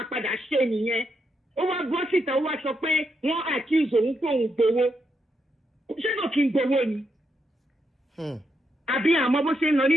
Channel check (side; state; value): both; normal; correlation 0.81